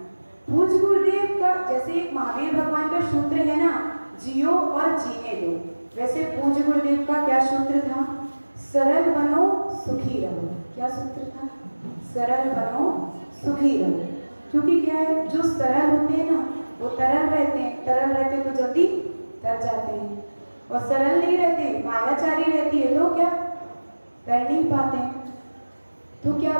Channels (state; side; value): inverted; both; correlation -1.00